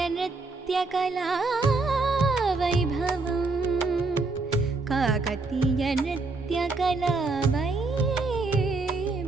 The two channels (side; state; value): left; quieter; 3.7 dB